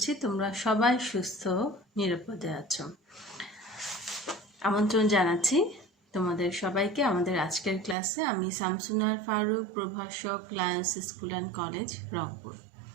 তোমরা সবাই সুস্থ নিরাপদে আছো। আমন্ত্রণ জানাচ্ছি তোমাদের সবাইকে আমাদের আজকের ক্লাসে। আমি শামসুনার ফারুক, প্রভাষক, Lions school and college, Rangpur.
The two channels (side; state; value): left; drops out; at 8.0 s